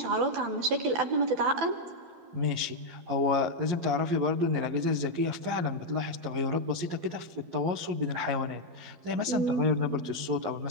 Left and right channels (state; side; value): late; left; 11 ms